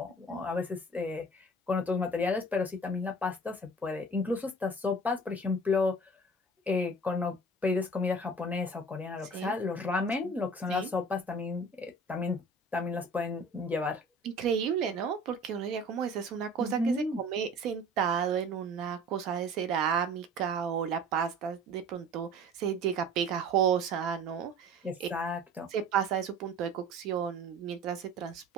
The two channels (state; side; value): normal; both; correlation 0.44